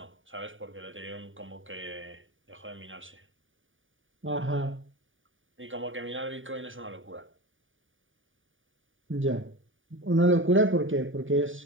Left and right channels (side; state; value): left; late; 0.57 ms